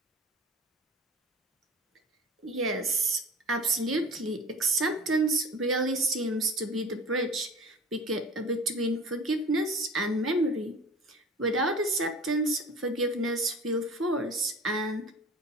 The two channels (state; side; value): normal; both; correlation 0.39